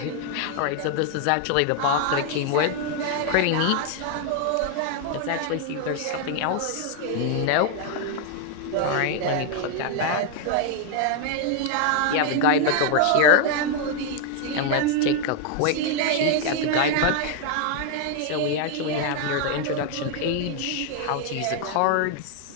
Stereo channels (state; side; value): different; both; correlation 0.00